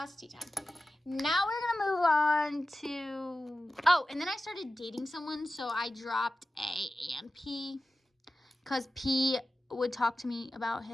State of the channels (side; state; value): both; normal; correlation 0.95